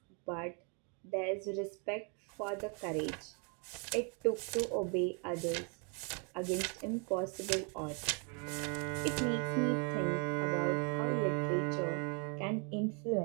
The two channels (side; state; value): left; quieter; 36.7 dB